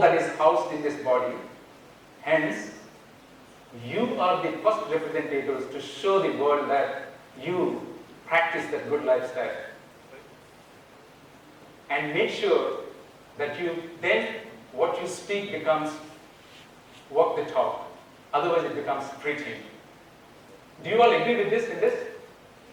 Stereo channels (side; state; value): both; identical; correlation 1.00